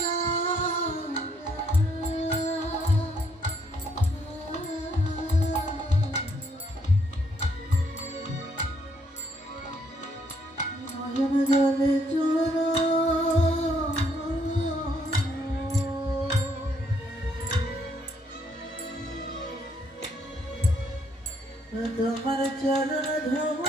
জলে চোর তোমার চরণ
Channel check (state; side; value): normal; both; correlation 0.71